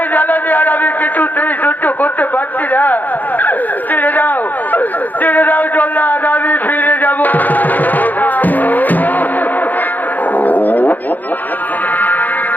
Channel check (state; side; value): late; right; 0.084 ms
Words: জ্বালানি আর আমি কিছুতেই সহ্য করতে পারছি না। ছেড়ে দাও জল্লাদ, আমি ফিরে যাব।